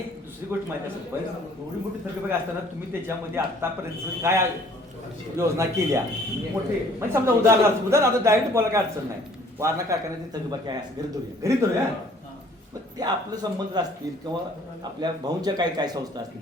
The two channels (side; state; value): both; normal; correlation 0.56